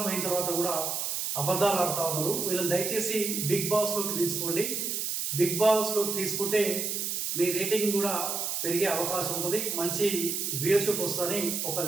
అయిన తర్వాత కూడా అబద్ధాలు ఆడుతూ ఉన్నారు. వీళ్ళని దయచేసి బిగ్ బాస్లోకి తీసుకోండి. బిగ్ బాస్లోకి తీసుకుంటే మీ రేటింగ్ కూడా పెరిగే అవకాశం ఉంటుంది, మంచి వ్యూయర్షిప్ వస్తుందని ఒక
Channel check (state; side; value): noise; right; hiss, 1 dB below the sound